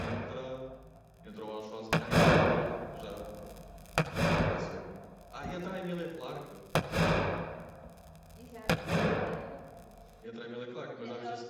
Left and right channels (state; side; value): identical; both; correlation 1.00